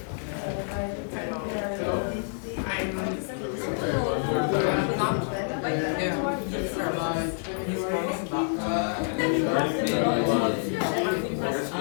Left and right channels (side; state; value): right; silent; 60 dB below the other